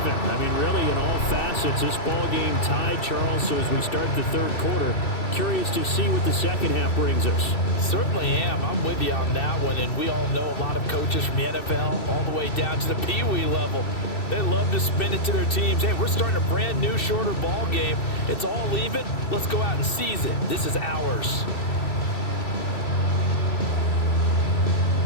I mean, really, in all facets, this ball game tied, Charles. So as we start the third quarter, curious to see what the second half brings us. Certainly am. I'm with you on that one. And we all know a lot of coaches from the NFL all the way down to the Pee Wee level. They love to spin it to their teams. Hey, we're starting a brand new, shorter ball game. It's all even. Let's go out and seize it. This is ours.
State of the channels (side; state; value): right; late; 2.7 ms